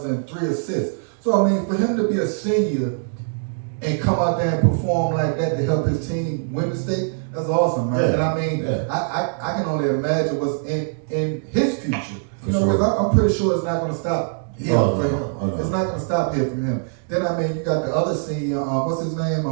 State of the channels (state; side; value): silent; left; digital silence